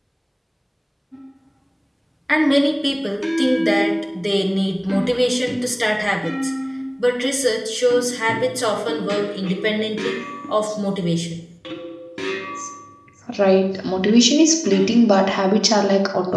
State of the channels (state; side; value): identical; both; correlation 1.00